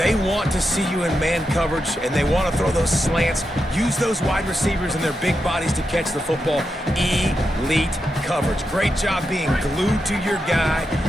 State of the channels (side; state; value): both; normal; correlation 0.87